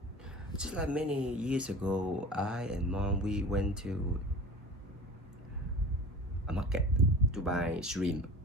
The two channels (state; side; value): normal; both; correlation 0.37